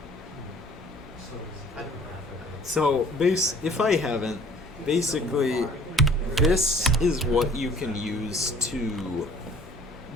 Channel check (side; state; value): both; normal; correlation 0.52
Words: So, if I haven't, basically, this is what you can use to